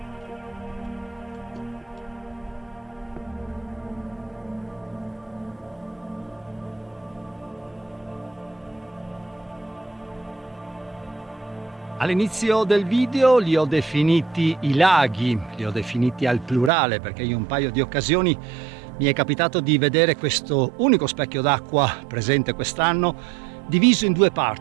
All'inizio del video li ho definiti i laghi, li ho definiti al plurale perché in un paio di occasioni mi è capitato di vedere questo unico specchio d'acqua presente quest'anno diviso in due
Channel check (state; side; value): drops out; left; at 16.7 s